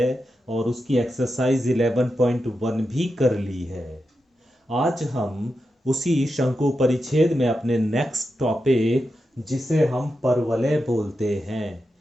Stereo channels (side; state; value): both; normal; correlation 0.88